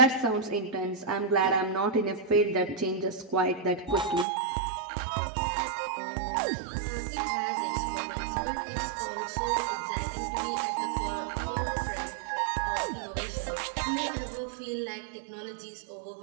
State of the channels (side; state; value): left; drops out; at 4.2 s